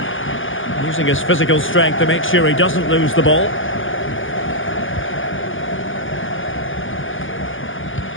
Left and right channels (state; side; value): late; right; 0.58 ms